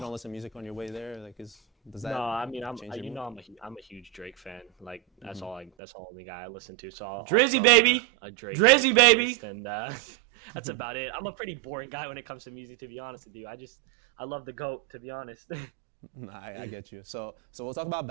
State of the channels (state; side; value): drops out; left; at 5.7 s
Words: listen to music on your way there? Like, does that? No, I mean I'm change your mood? I'm a huge Drake fan. Like that's the only guy I listen to. So I'll Drizzy, throw baby! a Drake Drizzy, baby! playlist, and that's about it. I'm a pretty boring guy when it comes to music, to be honest with you. I love the GOAT, to be honest. Nah, I get you. So we'll talk about